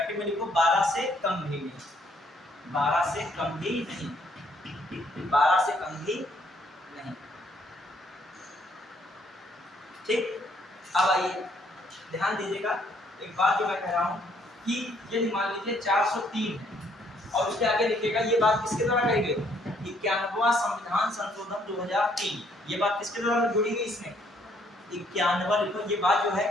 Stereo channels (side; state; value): both; normal; correlation 0.67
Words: में लिखो 12 से कम भी नहीं, 12 से कम भी नहीं, 12 से कम भी नहीं। ठीक, अब आइए ध्यान दीजिएगा, एक बात जो मैं कह रहा हूं कि यदि मान लीजिए 403 है और उसके आगे लिखेगा, ये बात किसके द्वारा कही गई? 91वां संविधान संशोधन 2003, ये बात किसके द्वारा जुड़ी गई? इसमें 91 लिखो, ये बात जो है